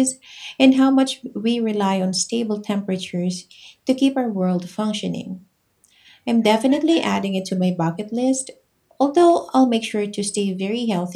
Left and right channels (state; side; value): identical; both; correlation 1.00